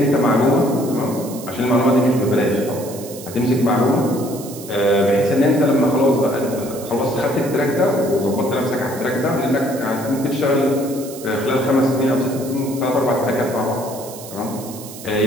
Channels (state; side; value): noise; right; hiss, 15 dB below the sound